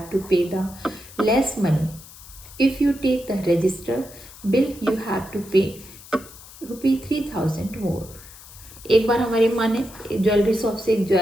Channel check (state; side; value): noise; left; hiss, 19 dB below the sound